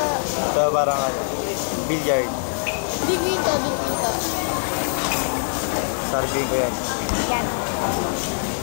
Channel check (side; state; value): right; silent; digital silence